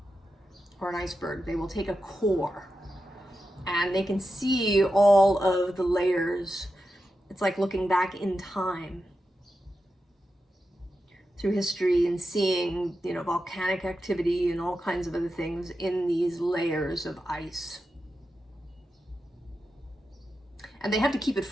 or an iceberg. They will take a core and they can see all of the layers. It's like looking back in time through history and seeing, you know, volcanic activity and all kinds of other things in these layers of ice. And they have to keep it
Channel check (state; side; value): normal; both; correlation 0.90